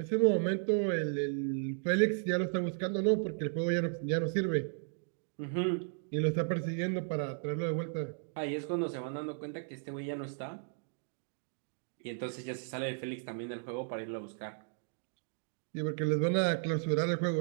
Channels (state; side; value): silent; left; digital silence